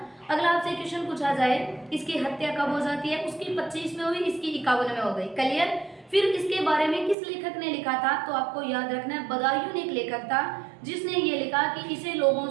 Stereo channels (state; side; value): drops out; left; at 7.2 s